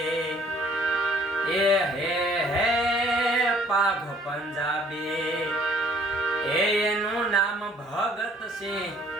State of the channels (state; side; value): normal; both; correlation 0.58